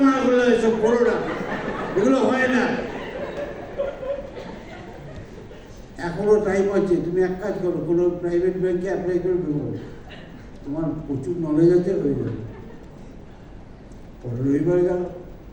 মানা করলে এসব করো না, এগুলো হয় না। এখনো টাইম আছে, তুমি এক কাজ করো, কোনো প্রাইভেট ব্যাংকে অ্যাপ্লাই করে দেবো, তোমার প্রচুর নলেজ আছে, হয়ে যাবে। পরে রবিবার গেল,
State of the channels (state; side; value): identical; both; correlation 1.00